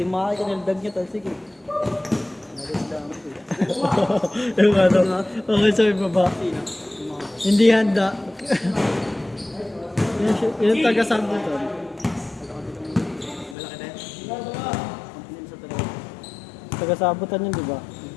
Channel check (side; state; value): right; drops out; at 13.6 s